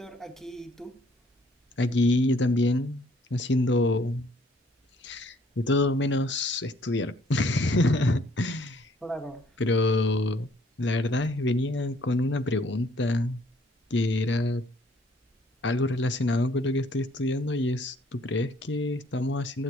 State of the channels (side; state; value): both; normal; correlation 0.62